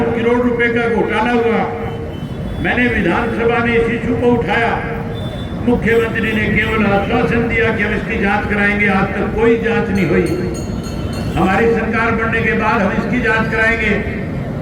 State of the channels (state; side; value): identical; both; correlation 1.00